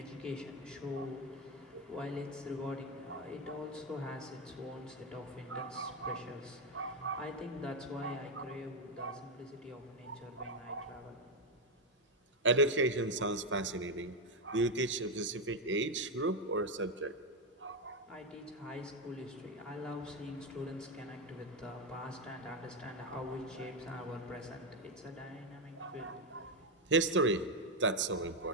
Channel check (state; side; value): normal; both; correlation 0.07